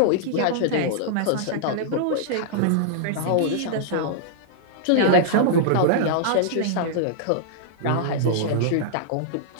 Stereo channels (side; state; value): both; different; correlation -0.02